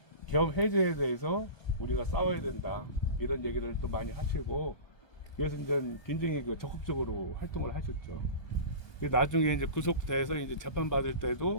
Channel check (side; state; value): right; late; 1.2 ms